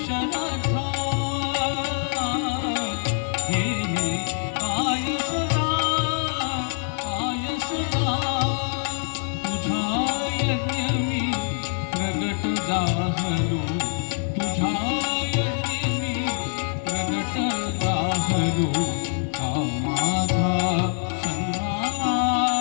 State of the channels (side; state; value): right; silent; 57 dB below the other